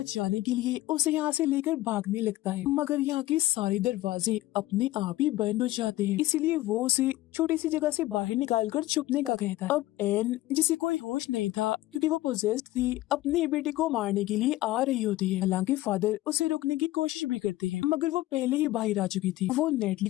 के लिए उसे यहाँ से लेकर भागने लगता है मगर यहाँ के सारे दरवाजे अपने आप ही बंद हो जाते हैं इसलिए वो उसे छोटी सी जगह से बाहर निकालकर छुपने का कहता है। अब एन जिसे कोई होश नहीं था क्योंकि वो पोजेस्ड थी अपनी बेटी को मारने के लिए आ रही होती है। हालांकि फादर उसे रोकने की कोशिश भी करते हैं मगर वो पहले ही बाहर आ चुकी थी। वो नेटली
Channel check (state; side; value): quieter; right; 16.7 dB